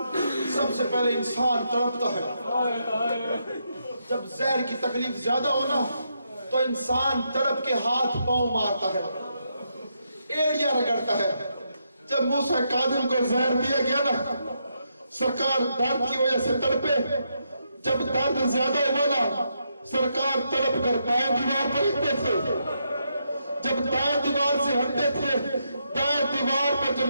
سب سے پہلے انسان تڑپتا ہے. جب زہر کی تکلیف زیادہ ہونا تو انسان تڑپ کے ہاتھ پاؤں مارتا ہے، ایڑیاں رگڑتا ہے. جب موسیٰ کاظم کو زہر دیا گیا نا، سرکار درد کی وجہ سے تڑپے. جب درد زیادہ ہوا نا، سرکار تڑپ کر دائیں دیوار پر ہٹتے تھے. جب دائیں دیوار سے ہٹتے تھے، دائیں دیوار پر جو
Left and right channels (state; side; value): inverted; both; correlation -0.80